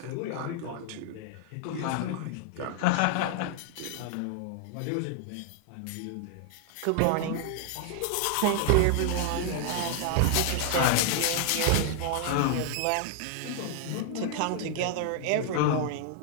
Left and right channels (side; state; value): both; different; correlation 0.00